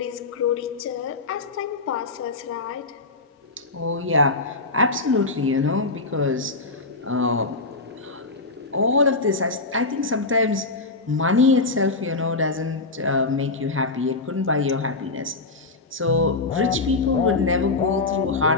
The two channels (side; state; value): right; quieter; 3.5 dB